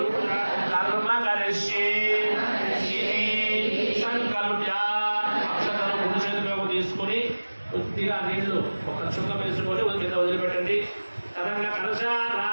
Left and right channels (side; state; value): both; inverted; correlation -1.00